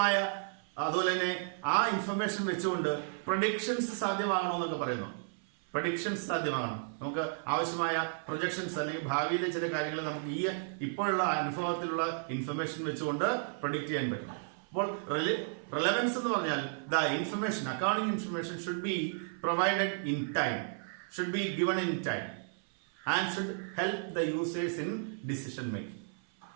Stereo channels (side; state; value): left; silent; 56 dB below the other